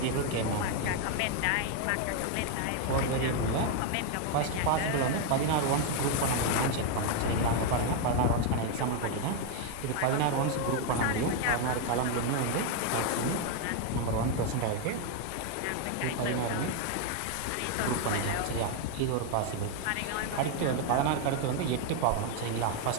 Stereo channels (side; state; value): both; different; correlation 0.01